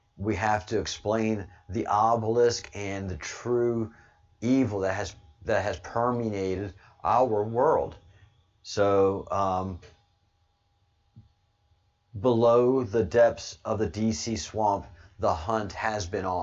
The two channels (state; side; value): identical; both; correlation 1.00